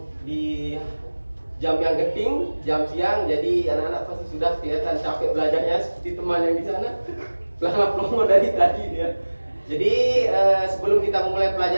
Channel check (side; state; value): both; inverted; correlation -1.00